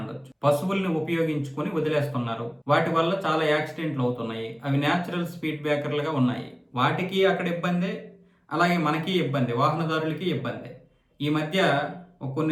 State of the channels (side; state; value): both; identical; correlation 1.00